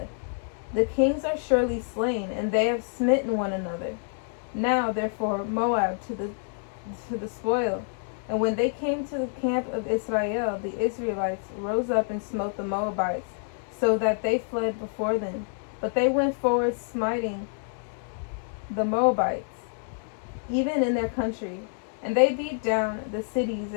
The kings are surely slain, and they have smitten one another. Now therefore Moab to the spoil. And when they came to the camp of Israel, the Israelites rose up and smote the Moabites, so that they fled before them. But they went forward, smiting the Moabites, even in their country. And they beat down the cities,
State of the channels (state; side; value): silent; right; 60 dB below the other